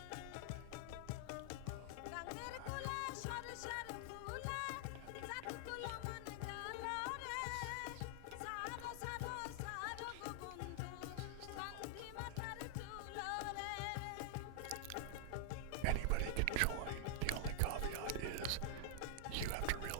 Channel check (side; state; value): both; different; correlation 0.00